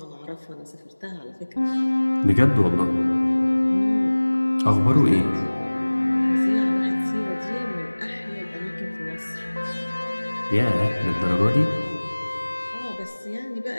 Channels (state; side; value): inverted; both; correlation -1.00